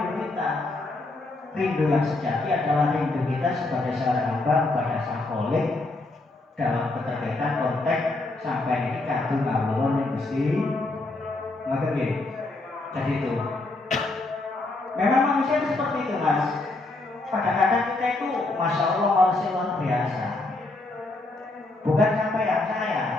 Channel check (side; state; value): right; quieter; 3.0 dB